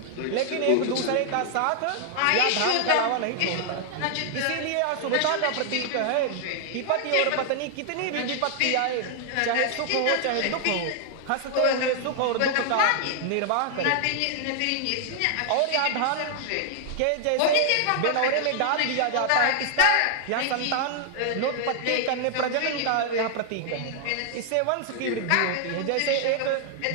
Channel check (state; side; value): different; both; correlation 0.00